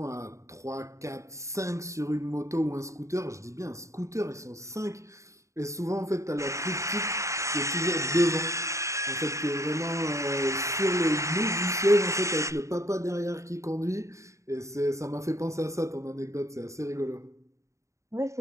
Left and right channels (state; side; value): late; left; 0.15 ms